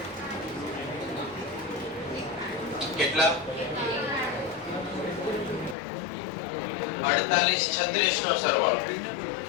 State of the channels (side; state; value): right; drops out; at 5.8 s